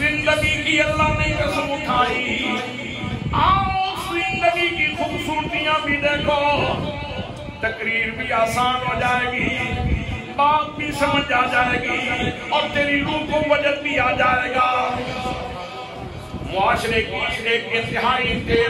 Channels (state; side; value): identical; both; correlation 1.00